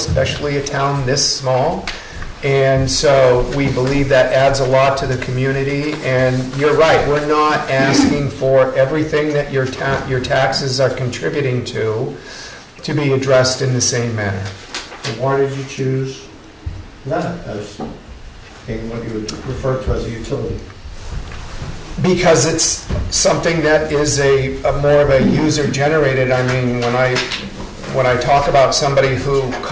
a town this small. And so we believe that adds a lot to the community. And you're right, we're not asking for everything that your taxes are contributing to be addressed in the same manner. So why did you choose that as being what you would refer to as a utility? Because it's something that is a more of a user-generated. I mean, when I talk about somebody who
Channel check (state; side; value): identical; both; correlation 1.00